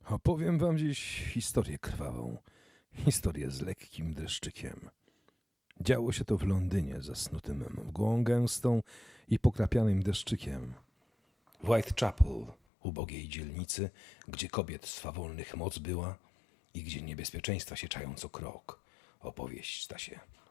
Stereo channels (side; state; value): right; drops out; at 12.6 s